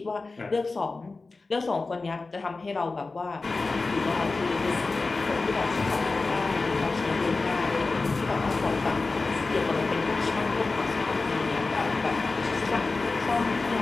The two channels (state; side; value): quieter; right; 3.7 dB